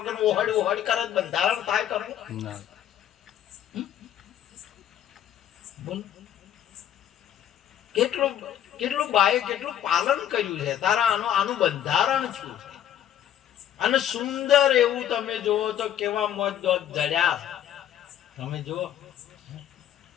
ઓહડ કરે બંધારણ થાય ખરું ના. બોલ કેટલું બાએ કેટલું પાલન કર્યું છે તારા આનું બંધારણ છું છે. અને સુંદર એવું તમે જુઓ તો કેવા મોજ દોત જડ્યા તમે જુઓ.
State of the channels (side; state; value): right; quieter; 10.7 dB